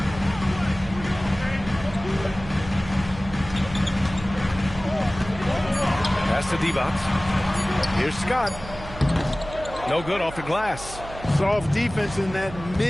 Pass to Divac. Here's Scott. No good off the glass. Soft defense in that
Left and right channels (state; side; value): noise; right; hum, 13 dB below the sound